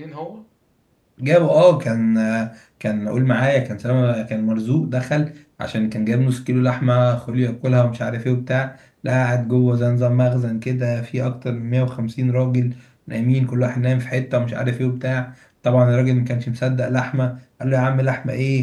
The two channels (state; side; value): identical; both; correlation 1.00